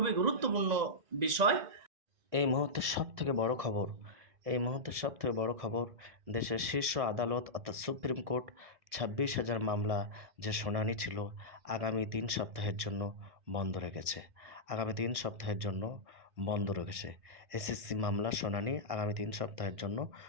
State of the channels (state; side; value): late; left; 1.6 ms